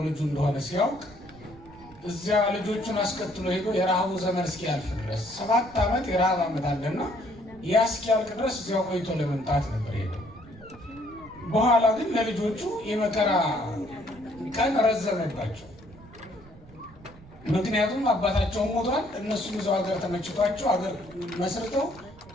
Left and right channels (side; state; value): right; noise; rumble, 21 dB below the sound